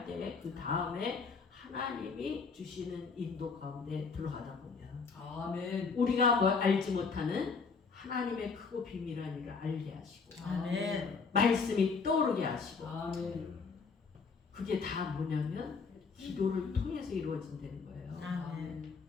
때 그 다음에 하나님이 주시는 인도 가운데 들어가다 보면 아멘. 우리가 뭐 알지 못하는 하나님의 크고 비밀한 일을 알게 하시고 아멘. 말씀이 떠오르게 하시고 아멘. 그게 다 뭐냐면 기도를 통해서 이루어진다는 거예요. 아멘.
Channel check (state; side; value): quieter; right; 5.0 dB